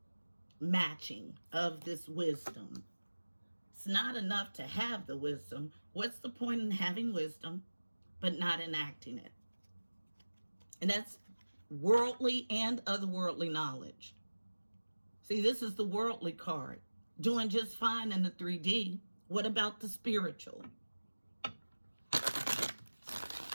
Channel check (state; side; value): inverted; both; correlation -1.00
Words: matching of this wisdom. It's not enough to have the wisdom. What's the point in having wisdom, but not enacting it? And that's worldly and otherworldly knowledge. See, this is the worldly card. Doing just fine in the 3D. What about the spiritual?